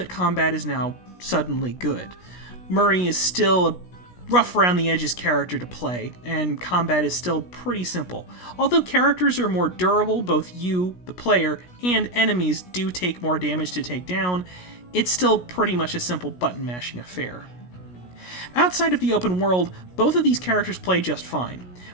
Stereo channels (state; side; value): late; right; 16 ms